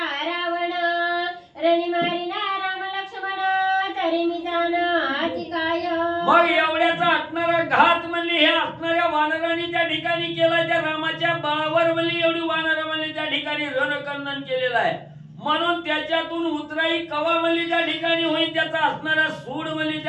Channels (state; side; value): identical; both; correlation 1.00